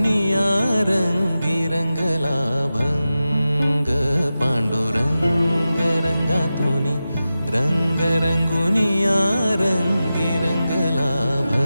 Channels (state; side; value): inverted; both; correlation -0.93